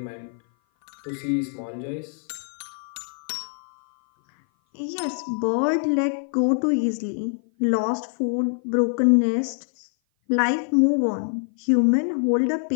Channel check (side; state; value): right; silent; 56 dB below the other